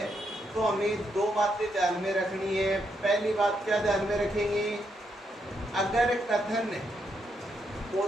तो हमें दो बातें ध्यान में रखनी है। पहली बात क्या ध्यान में रखेंगे, अगर कथन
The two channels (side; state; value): both; normal; correlation 0.79